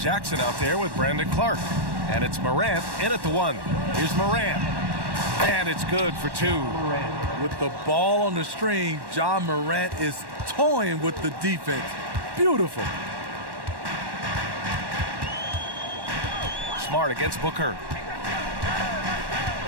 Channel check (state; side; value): late; left; 1.1 ms